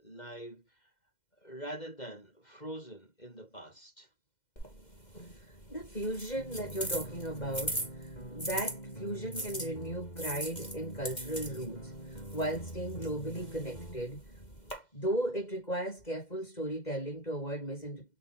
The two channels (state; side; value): late; right; 2.0 ms